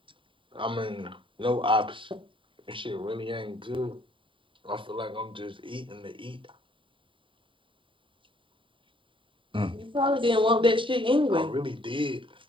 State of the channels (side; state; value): left; late; 0.25 ms